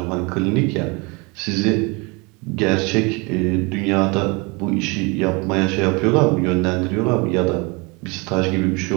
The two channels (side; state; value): left; quieter; 28.3 dB